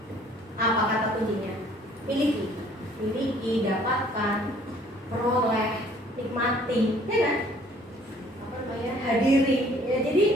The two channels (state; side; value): normal; both; correlation 0.57